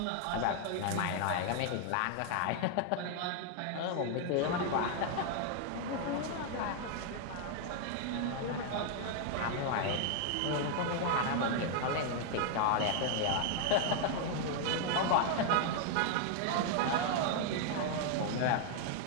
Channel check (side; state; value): both; different; correlation 0.00